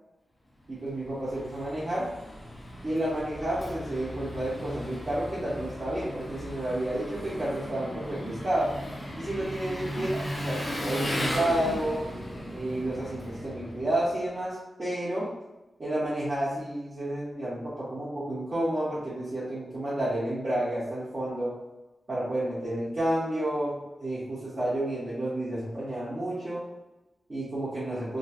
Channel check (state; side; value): normal; both; correlation 0.90